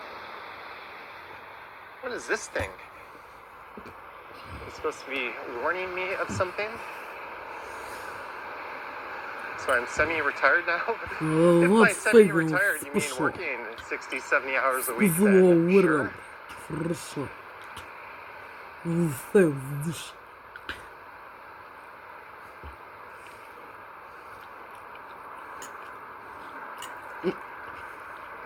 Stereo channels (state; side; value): identical; both; correlation 1.00